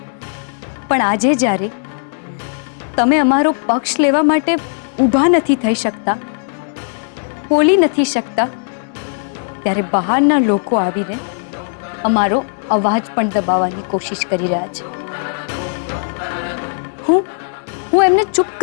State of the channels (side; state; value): right; silent; digital silence